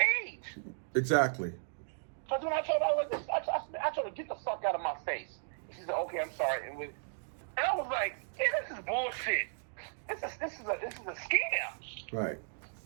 Exactly. So when I told her, I told her, get the fuck out of my face. And she said, okay, I'm sorry. And I was like, yeah, this is bullshit. This is a scam. Right.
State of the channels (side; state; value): left; silent; digital silence